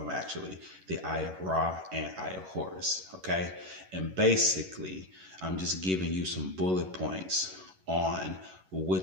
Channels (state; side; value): late; left; 11 ms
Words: actually, the Eye of Ra and Eye of Horus. Okay, and basically, I'm just giving you some bullet points on